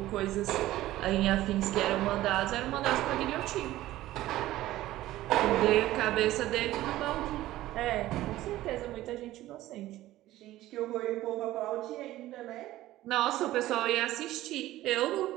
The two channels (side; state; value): left; quieter; 15.5 dB